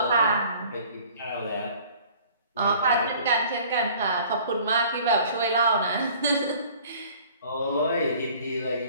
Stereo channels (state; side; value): inverted; both; correlation -0.51